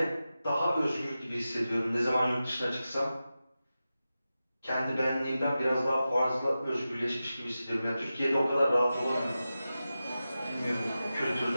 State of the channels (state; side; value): inverted; both; correlation -0.93